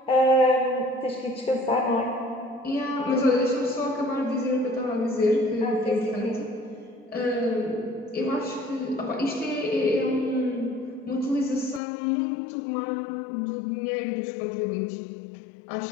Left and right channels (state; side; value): drops out; right; at 11.8 s